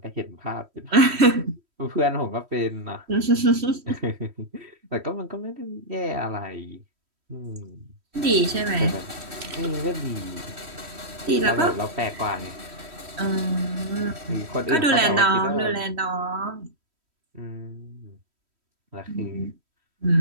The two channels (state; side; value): late; left; 3.1 ms